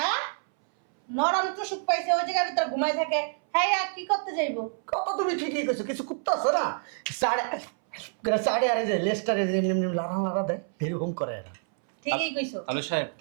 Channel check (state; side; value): silent; left; 60 dB below the other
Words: নরম টুসুক পাইছে ওই জায়গার ভিতরে ঘুমাই থাকে, হ্যাঁ আর কি করতে যাইবো? কথা তুমি ঠিকই কইছো, কিছু কুত্তা আছে না সাড়ে আরে যে লেস্টারে যে এমনি লাড়া দেয়, এরকম করে এরা। ঠিকই কইছো। তাহলে সাহেব